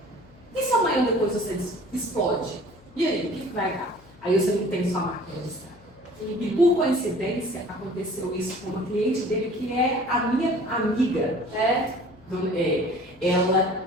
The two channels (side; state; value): left; noise; hum, 26 dB below the sound